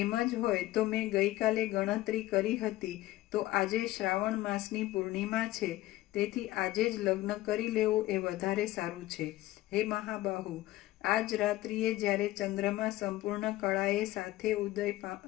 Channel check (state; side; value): quieter; right; 16.6 dB